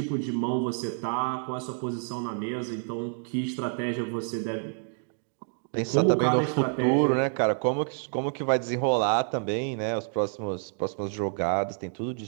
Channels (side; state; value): left; silent; 59 dB below the other